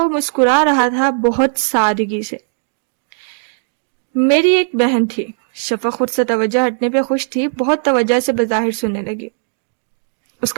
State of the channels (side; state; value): left; silent; digital silence